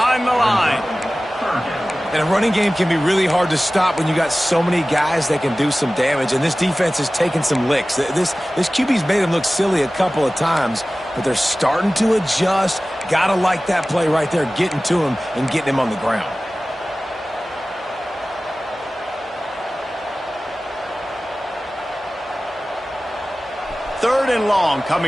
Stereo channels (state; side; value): normal; both; correlation 0.97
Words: the line. And a running game can be really hard to stop when you got so many guys that can do some damage, and this defense is taking some licks. This QB's made him look silly a couple of times, but they're starting to adjust. Gotta like that play right there, getting to him and getting him on the ground. Third and long